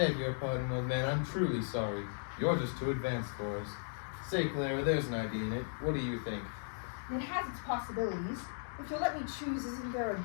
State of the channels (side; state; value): right; silent; digital silence